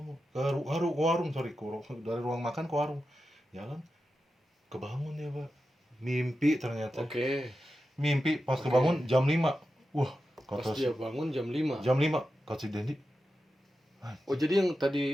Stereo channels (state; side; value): normal; both; correlation 0.91